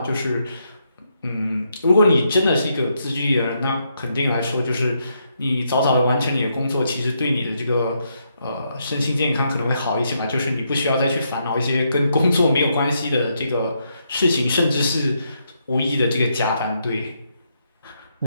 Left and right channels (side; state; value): both; inverted; correlation -0.78